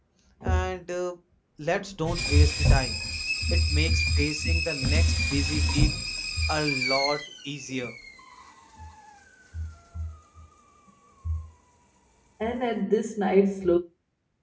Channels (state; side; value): identical; both; correlation 1.00